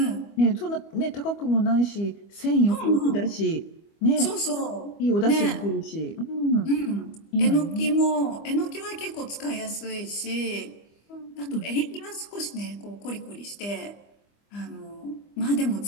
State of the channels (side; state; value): right; late; 25 ms